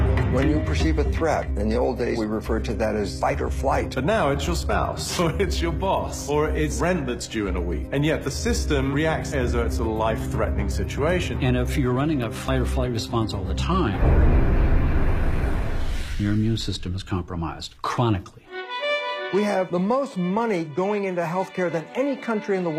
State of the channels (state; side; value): identical; both; correlation 1.00